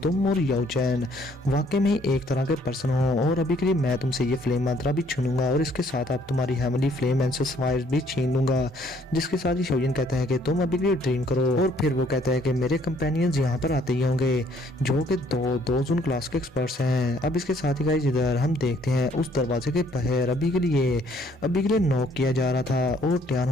तुम और याओ चैन वाकई में एक तरह के पर्सन हो और अभी के लिए मैं तुमसे ये फ्लेम मंत्रा भी छीनूंगा और इसके साथ आप तुम्हारी हेवनली फ्लेम एंसेस फायर्स भी छीन लूंगा। जिसके साथ ही शाओयन कहता है कि तुम अभी के लिए ड्रीम करो और फिर वो कहता है कि मेरे कंपेनियंस यहाँ पर आते ही होंगे जो कि दो जोन क्लास के एक्सपर्ट्स हैं। अब इसके साथ ही गाइस इधर हम देखते हैं उस दरवाजे के बाहर अभी के लिए नॉक किया जा रहा था और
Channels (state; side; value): normal; both; correlation 0.64